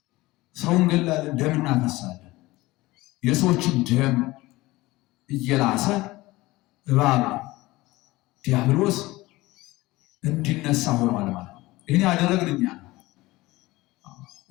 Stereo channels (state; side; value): quieter; right; 19.7 dB